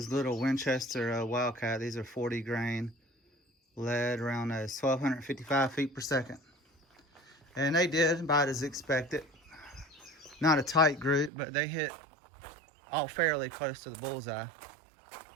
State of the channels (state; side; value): drops out; left; at 11.3 s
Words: little Winchester Wildcat. These are 40 grain lead, around 1,255 feet per second. And they did about as expected. Not a tight group, but they hit all fairly close to the bullseye.